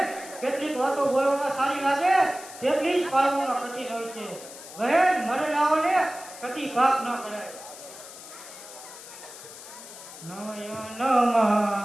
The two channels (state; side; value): noise; left; hiss, 15 dB below the sound